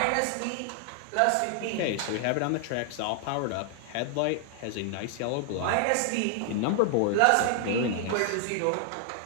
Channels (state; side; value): different; both; correlation 0.00